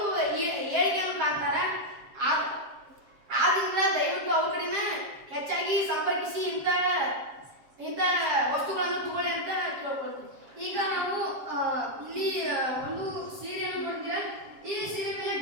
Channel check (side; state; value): left; late; 7.4 ms